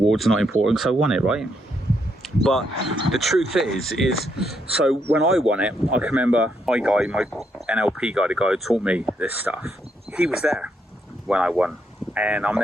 not important, so I won it, right? But the truth is so when I won it, I can remember my NLP guy, the guy who taught me this stuff, he was there when I won. And I'm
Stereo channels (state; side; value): normal; both; correlation 0.76